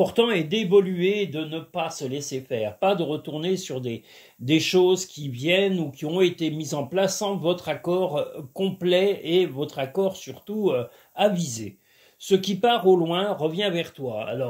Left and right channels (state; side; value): identical; both; correlation 1.00